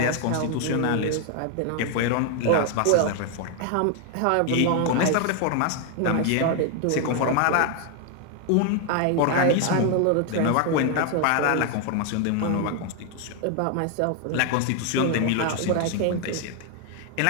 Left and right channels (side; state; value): both; different; correlation 0.00